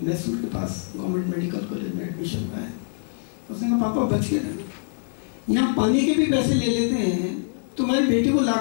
मैसूर के पास गवर्नमेंट मेडिकल कॉलेज में एडमिशन हुआ है। उसने कहा पापा बच के रहना, यहाँ पानी के भी पैसे ले लेते हैं, तुम्हारी बेटी को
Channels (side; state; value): right; silent; digital silence